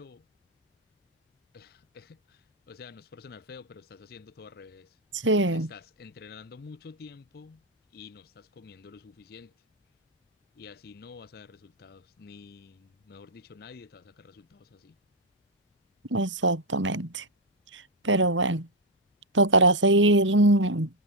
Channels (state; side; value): normal; both; correlation 0.01